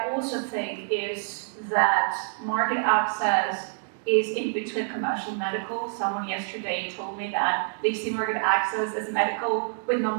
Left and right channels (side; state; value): left; silent; digital silence